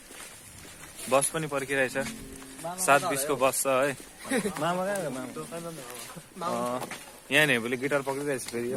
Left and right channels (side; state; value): both; identical; correlation 1.00